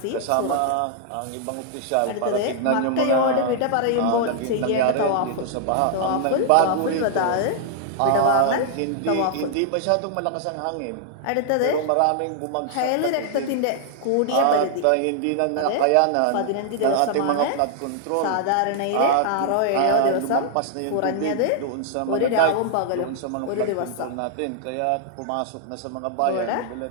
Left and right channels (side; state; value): both; different; correlation -0.01